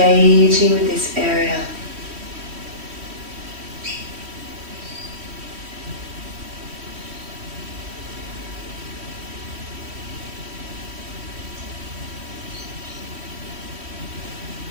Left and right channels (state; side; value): late; left; 3.1 ms